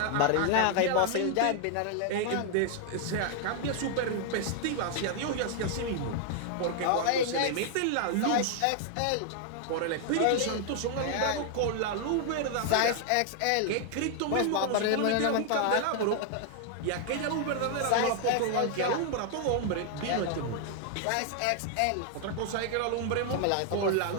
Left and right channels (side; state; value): both; different; correlation 0.00